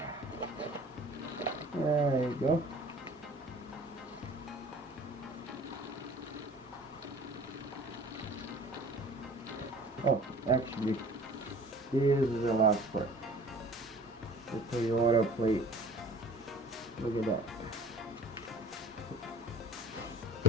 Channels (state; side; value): normal; both; correlation 0.46